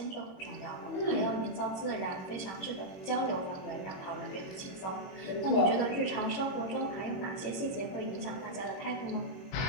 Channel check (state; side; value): late; right; 21 ms